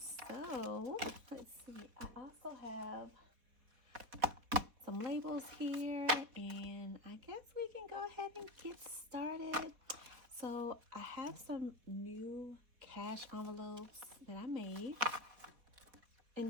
So let's see. I also have some labels here, and I guess we can go ahead and get started. So I have some new cash envelopes that I made. And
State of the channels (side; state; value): left; late; 4.0 ms